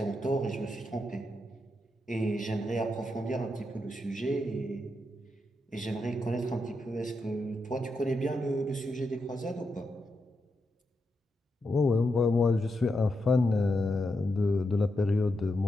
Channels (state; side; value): normal; both; correlation 0.85